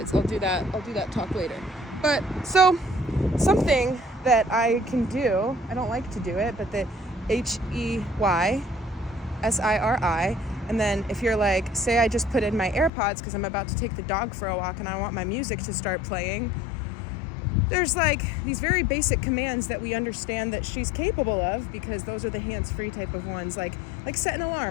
I'll do that talk later. But so something that I can do, I don't like to do it, but the HEYSIRI, and then if you're like, say I just put in my AirPods because I'm about to take the dog for a walk and I want my music to start playing, there's like these very basic commands that we understand that she's capable of, because those are the hands-free type of ones, like set an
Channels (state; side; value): drops out; right; at 12.9 s